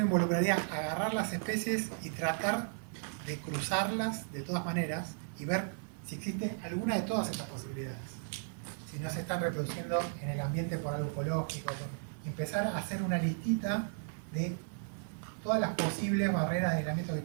involucraría agarrar las especies y tratar de cruzarlas de todas maneras y ver si existe alguna de todas estas posibilidades. Si no se están reproduciendo en el ambiente por algo ecológico, empezar a hacer una listita de todas las posibles barreras de aislamiento que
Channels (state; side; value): silent; left; 54 dB below the other